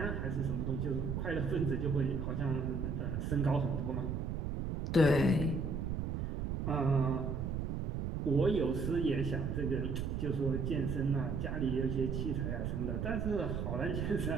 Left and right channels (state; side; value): noise; right; rumble, 2 dB below the sound